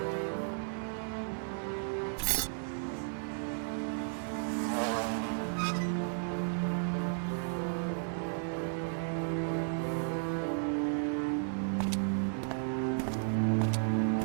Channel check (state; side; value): silent; left; 55 dB below the other